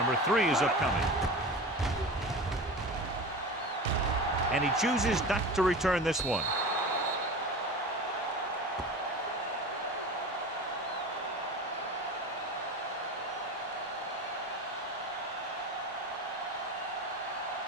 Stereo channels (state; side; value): normal; both; correlation 0.31